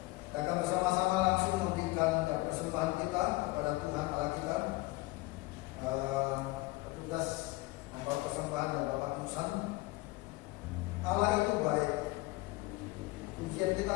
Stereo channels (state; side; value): quieter; right; 21.7 dB